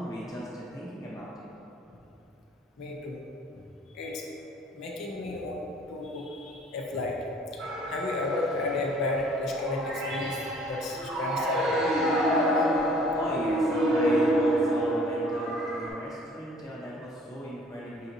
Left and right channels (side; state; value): both; normal; correlation 0.54